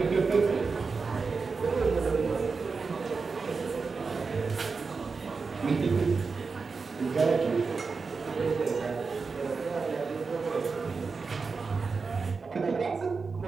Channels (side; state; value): left; quieter; 4.7 dB